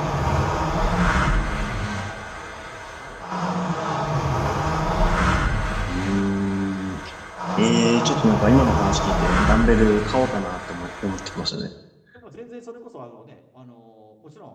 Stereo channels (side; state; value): both; identical; correlation 1.00